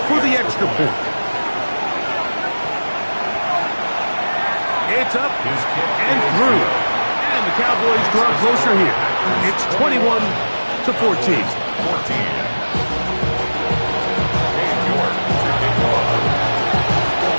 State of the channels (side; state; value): both; inverted; correlation -1.00